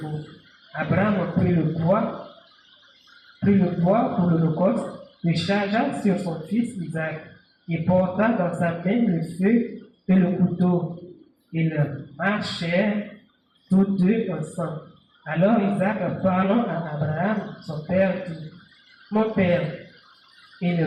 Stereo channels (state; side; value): identical; both; correlation 1.00